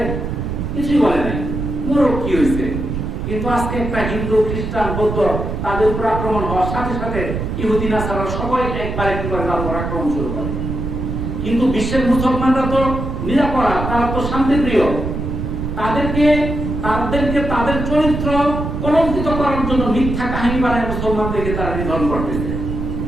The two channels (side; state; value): right; noise; rumble, 4 dB below the sound